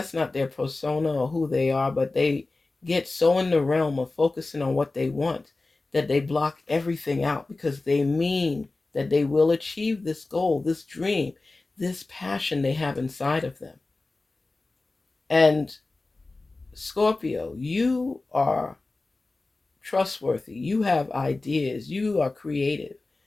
not their persona or who they are, but they get so in the realm of focusing on what they want that they block everything out because they mean that they will achieve this goal, this dream, this passion they have inside of them. And Scorpio, you are trustworthy. You have ideas. You are creative.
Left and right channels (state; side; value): quieter; right; 3.3 dB